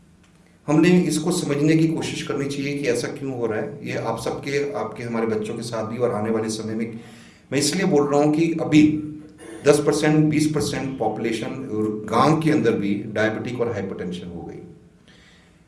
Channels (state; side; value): identical; both; correlation 1.00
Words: हमने इसको समझने की कोशिश करनी चाहिए कि ऐसा क्यों हो रहा है। ये आप सबके, आपके, हमारे बच्चों के साथ भी, और आने वाले समय में मैं इसलिए बोल रहा हूँ कि अभी 10%, 20% पॉपुलेशन गांव के अंदर भी डायबिटिक और हाइपरटेंशन हो गई,